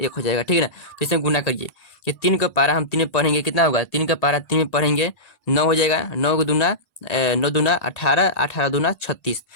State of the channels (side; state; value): right; late; 1.8 ms